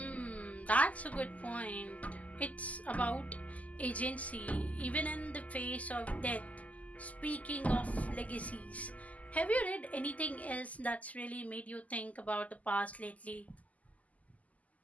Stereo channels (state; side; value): late; right; 0.074 ms